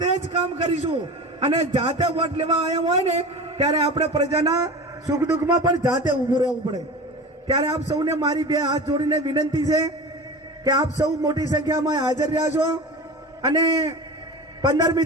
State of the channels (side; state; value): both; normal; correlation 0.32